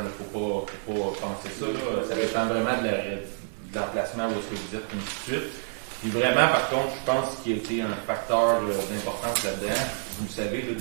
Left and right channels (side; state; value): left; silent; 59 dB below the other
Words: ne faut pas penser ça. Là. Ça dépend vraiment de l'emplacement où est-ce que vous êtes, et ainsi de suite. Puis vraiment, par contre, je pense qu'il y a été un facteur d'importance là-dedans. Vous le savez, là,